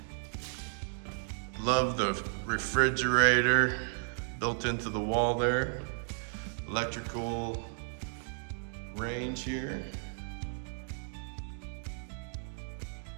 Love the refrigerator built into the wall there. Electrical range here.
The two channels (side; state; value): left; silent; digital silence